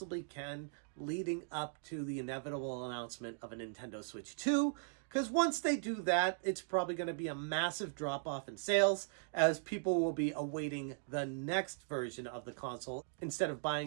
can, leading up to the inevitable announcement of a Nintendo Switch 2. Because once they do that, it's probably going to be a massive drop-off in sales, as people will be awaiting the next version of the console instead of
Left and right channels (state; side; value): silent; left; digital silence